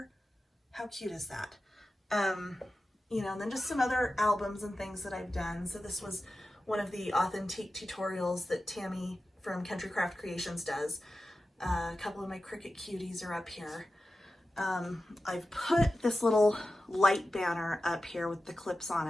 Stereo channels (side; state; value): both; normal; correlation 0.94